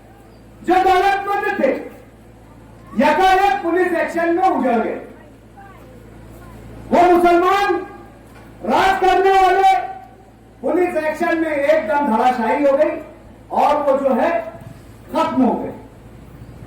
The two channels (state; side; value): identical; both; correlation 1.00